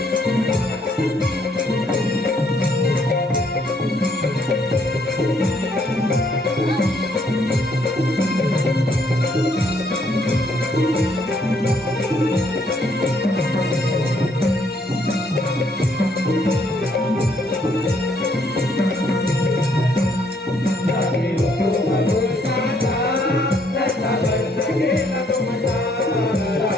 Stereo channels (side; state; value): both; normal; correlation 0.68